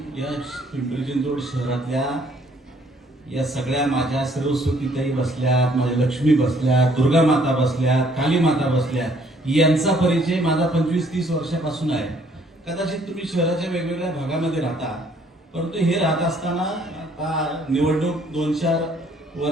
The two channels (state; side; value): normal; both; correlation 0.63